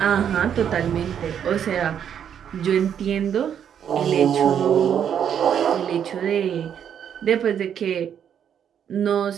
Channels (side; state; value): left; quieter; 8.7 dB